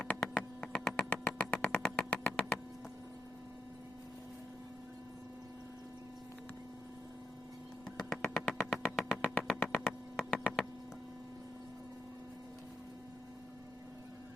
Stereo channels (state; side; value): normal; both; correlation 0.80